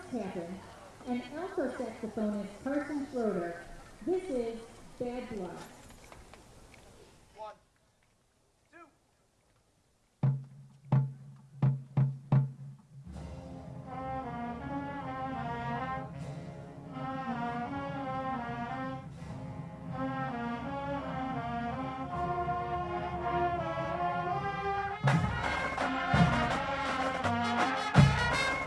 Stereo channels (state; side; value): identical; both; correlation 1.00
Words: Tappan and alto saxophonist Carson Schroeder, this is Bad Blood.